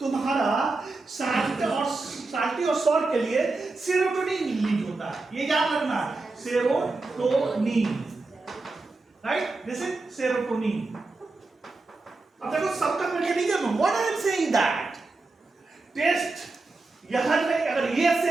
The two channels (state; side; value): quieter; left; 3.5 dB